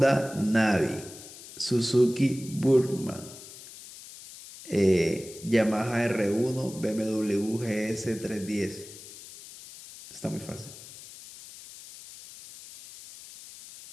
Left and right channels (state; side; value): noise; left; hiss, 16 dB below the sound